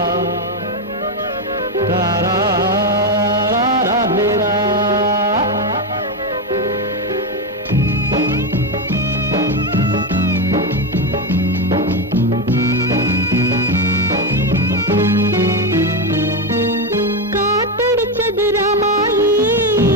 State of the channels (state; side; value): normal; both; correlation 0.11